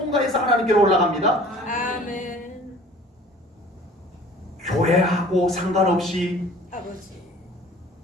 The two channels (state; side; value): normal; both; correlation 0.48